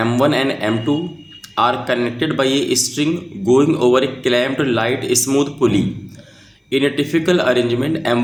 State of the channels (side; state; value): both; identical; correlation 1.00